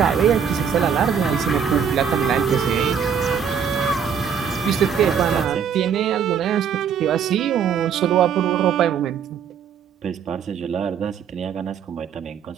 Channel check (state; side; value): quieter; left; 7.4 dB